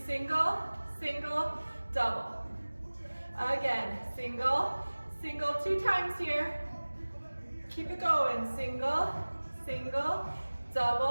single, single, double. Again, single, single, 2 times here. Keep it going. Single, single,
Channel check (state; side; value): inverted; both; correlation -1.00